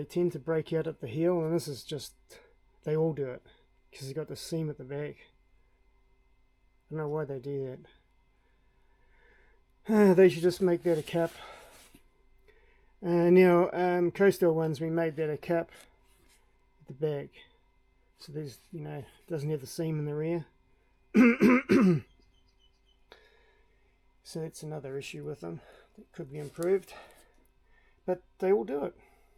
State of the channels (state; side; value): identical; both; correlation 1.00